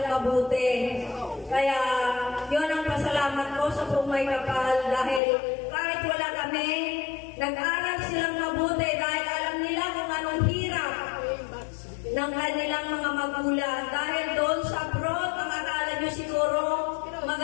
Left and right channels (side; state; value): right; drops out; at 5.2 s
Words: mabuti. Kaya, yun ang pasalamat ko sa Pumay Kapal dahil kahit wala kami, nag-aral silang mabuti dahil alam nila kung anong hirap ng kanilang mga magulang. Dahil doon sa abroad, ang akala nyo siguro